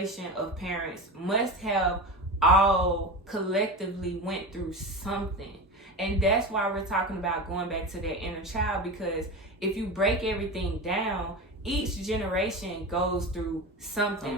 of parents must have all collectively went through something. And that's why we're talking about going back to that inner child, because if you break everything down, each generation goes through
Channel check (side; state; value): both; normal; correlation 0.26